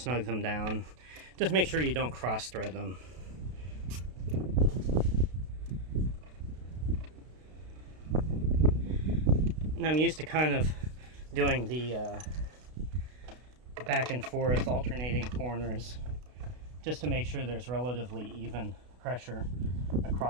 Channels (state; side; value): late; left; 32 ms